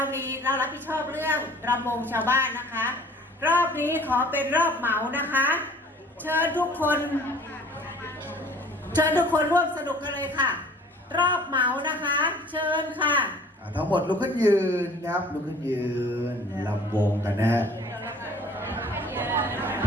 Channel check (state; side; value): normal; both; correlation 0.51